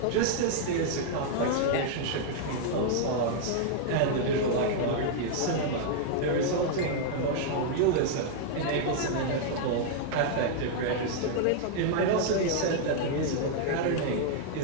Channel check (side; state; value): both; different; correlation -0.01